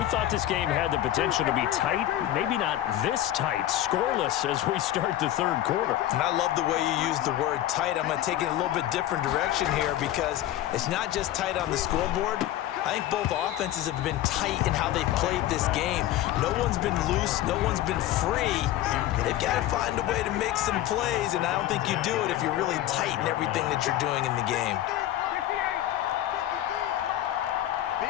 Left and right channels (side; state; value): right; quieter; 13.4 dB